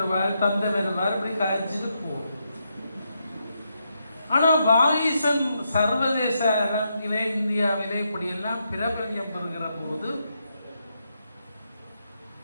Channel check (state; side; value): inverted; both; correlation -0.81